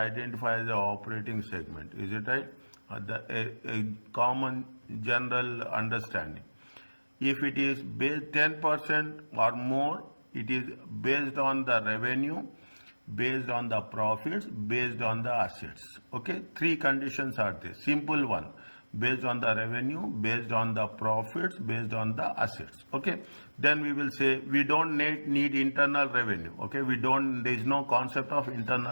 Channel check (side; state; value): both; inverted; correlation -1.00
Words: as an operating segment. Is it right? A common general understanding. If it is based 10% or more, it is based on the revenue, based on the profits, based on the assets. Okay, three conditions are there. Simple one. Based on the revenue, based on the profits, based on the assets. Okay, then we will say we don't need internal revenue. Okay, there is no concept of